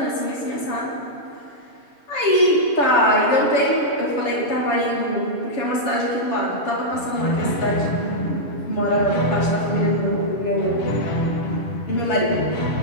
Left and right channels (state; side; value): late; right; 7.0 ms